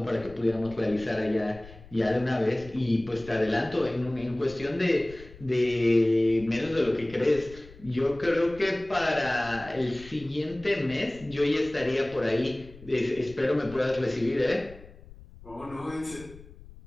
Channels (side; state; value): left; noise; rumble, 19 dB below the sound